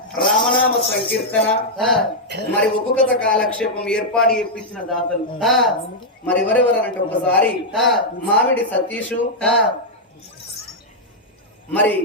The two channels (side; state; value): both; normal; correlation -0.04